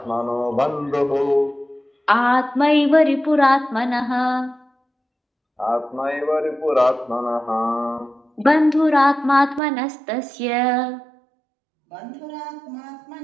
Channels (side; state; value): left; drops out; at 9.6 s